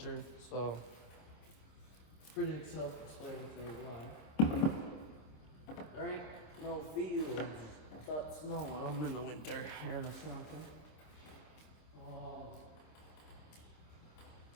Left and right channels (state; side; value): late; right; 26 ms